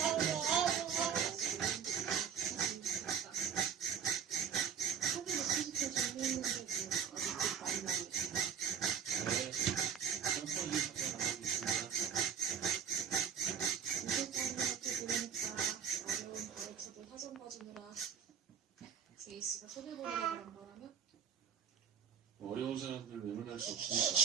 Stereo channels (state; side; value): quieter; left; 7.7 dB